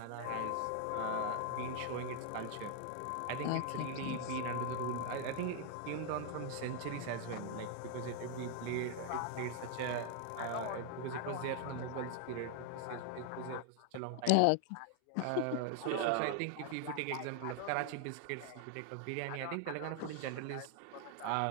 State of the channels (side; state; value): both; different; correlation 0.00